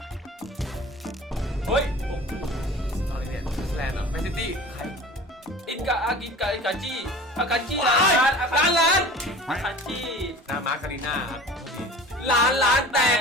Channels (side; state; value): both; normal; correlation 0.41